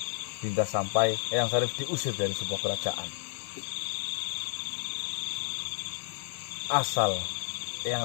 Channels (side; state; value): right; silent; digital silence